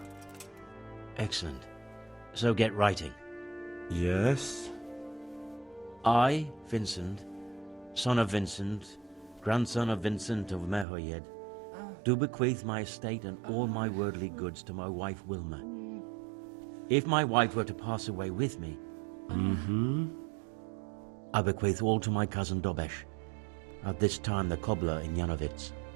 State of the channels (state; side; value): drops out; left; at 10.9 s